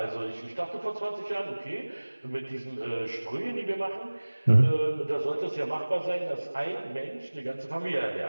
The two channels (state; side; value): inverted; both; correlation -1.00